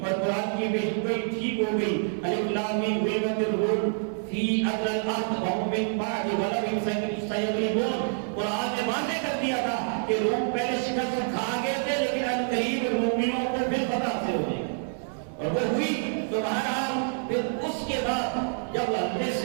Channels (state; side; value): silent; left; digital silence